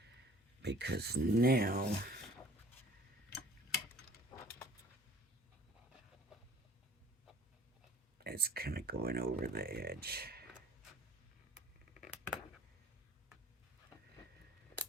Because now it's kind of going over the edge.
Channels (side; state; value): both; normal; correlation 0.50